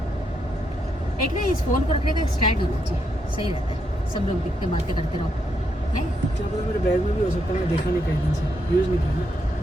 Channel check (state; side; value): normal; both; correlation 0.79